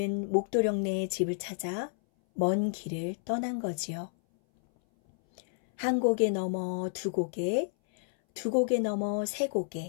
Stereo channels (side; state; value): right; silent; 58 dB below the other